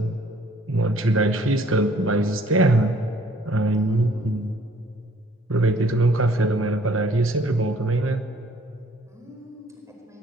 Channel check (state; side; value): normal; both; correlation 0.59